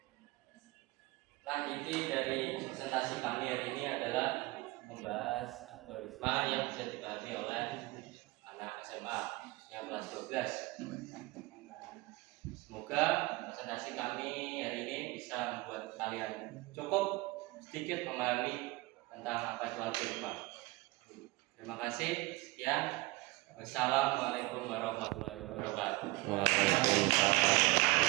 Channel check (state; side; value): quieter; left; 22.1 dB